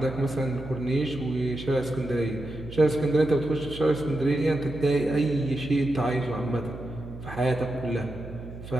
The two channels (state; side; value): noise; right; hum, 13 dB below the sound